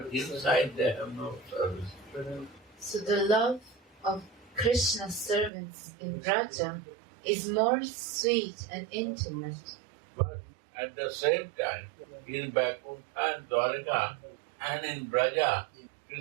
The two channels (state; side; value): drops out; left; at 5.5 s